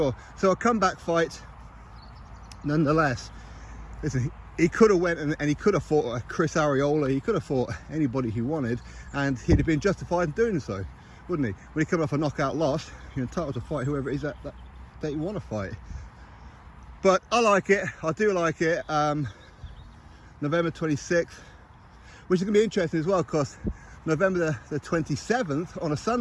So a comeback fight nonetheless. Listen, he could have went and he could have fought a Chris Arreola, he could have fought anybody he wanted, and he'd have been justified in doing so, wouldn't he? When he come off a knockout loss, you're entitled to fight whoever it is that you want to fight. But I like it, I do like it. November 26th, which is going to be interesting as well, because November the 27th on a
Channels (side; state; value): both; identical; correlation 1.00